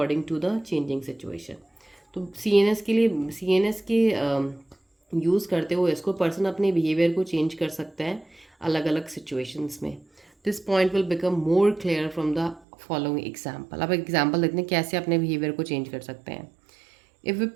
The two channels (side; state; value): left; drops out; at 12.6 s